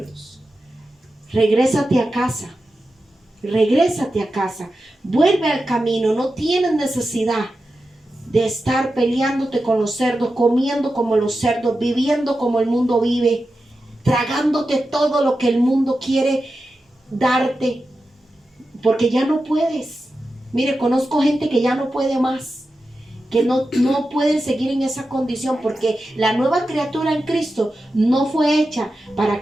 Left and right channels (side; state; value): both; normal; correlation 0.91